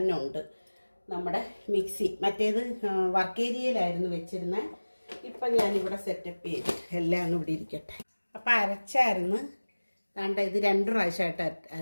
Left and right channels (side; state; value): both; inverted; correlation -1.00